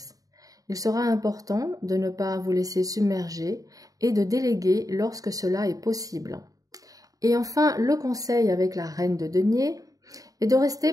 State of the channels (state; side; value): late; left; 0.17 ms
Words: Il sera important de ne pas vous laisser submerger et de déléguer lorsque cela est possible. Et enfin, le conseil avec la reine de denier et de rester